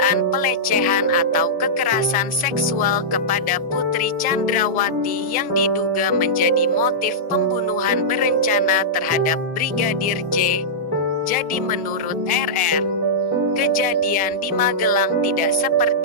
pelecehan atau kekerasan seksual kepada Putri Chandrawati yang diduga menjadi motif pembunuhan berencana terhadap Brigadir J. Jadi menurut RR, kejadian di Magelang tidak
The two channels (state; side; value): normal; both; correlation -0.12